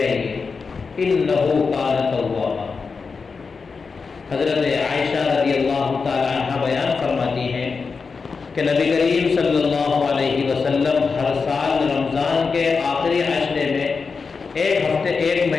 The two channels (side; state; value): right; quieter; 4.9 dB